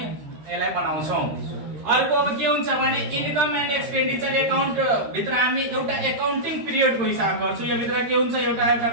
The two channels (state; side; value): late; left; 13 ms